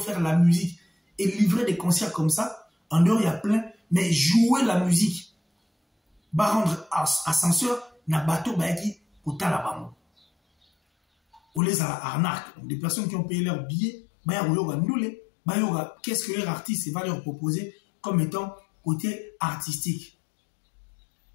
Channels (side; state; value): right; drops out; at 11.6 s